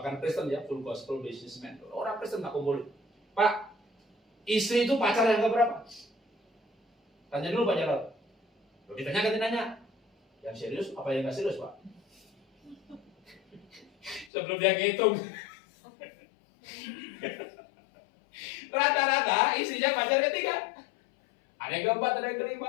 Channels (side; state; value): right; drops out; at 14.3 s